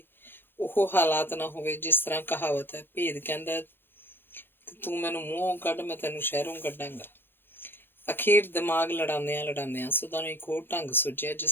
ਉਹ ਹਾਲਾਤ ਨਾ ਹੋਵੇ ਜਿਸ ਤਰ੍ਹਾਂ ਕਹਾਵਤ ਹੈ, ਭੇਦ ਕਹਿੰਦਾ ਤੂੰ ਮੈਨੂੰ ਮੂੰਹੋਂ ਕੱਢ, ਮੈਂ ਤੈਨੂੰ ਸ਼ਹਿਰੋਂ ਕੱਢਾਂਗਾ। ਅਖੀਰ ਦਿਮਾਗ ਲੜਾਉਂਦਿਆਂ ਸੁਦਾ ਨੂੰ ਇੱਕ ਹੋਰ ਢੰਗ ਸੁਝਿਆ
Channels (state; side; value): late; right; 0.10 ms